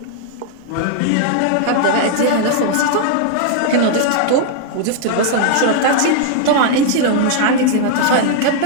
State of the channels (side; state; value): both; different; correlation -0.01